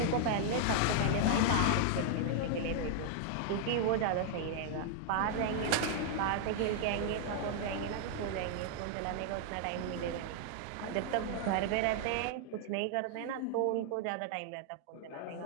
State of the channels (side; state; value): both; different; correlation 0.00